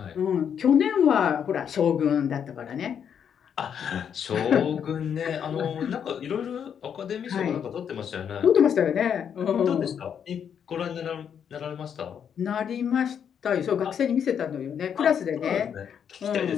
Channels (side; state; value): right; quieter; 8.1 dB